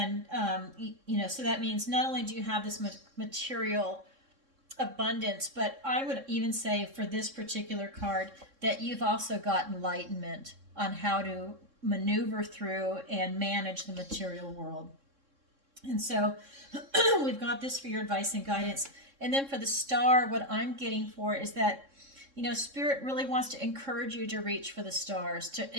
so that means not only do you have this material abundance, but I would even say for this particular card that you've also got enlightenment on how to maneuver through and manage the material world. And so we've got this for your advice and guidance. And then for the Star, what I'm getting for is that, Spirit really wants to encourage you to reach for the stars,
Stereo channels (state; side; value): late; left; 3.7 ms